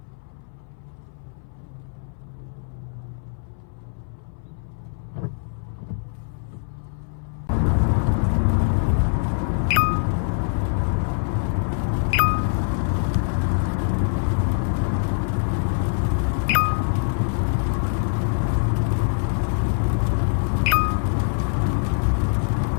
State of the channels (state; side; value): silent; right; 60 dB below the other